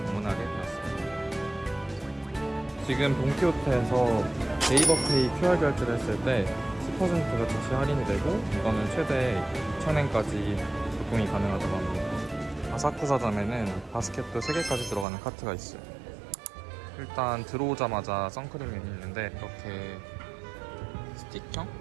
되었습니다. 지금 돈키호테에서 네이버페이 QR 결제를 했을 때 10%가 즉시 할인이 되고 이거는 최대 2,000엔까지 조금이 가능하다고 합니다. 아사쿠사점에는 바스켓도 3개까지 들어가는 카트가 있어요. 일단 들어오자마자 선크림이 있는데 이렇게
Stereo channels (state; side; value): drops out; left; at 15.1 s